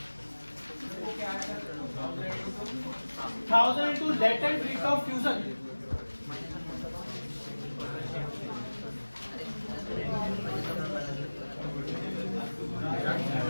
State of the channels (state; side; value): inverted; both; correlation -1.00